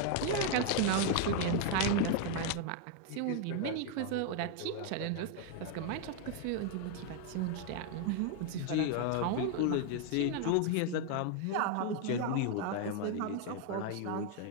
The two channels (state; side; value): different; both; correlation 0.01